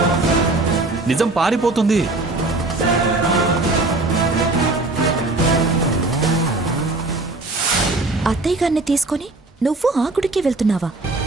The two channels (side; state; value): left; quieter; 3.1 dB